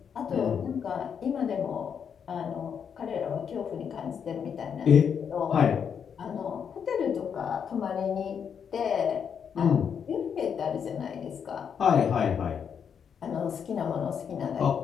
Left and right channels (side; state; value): right; quieter; 7.3 dB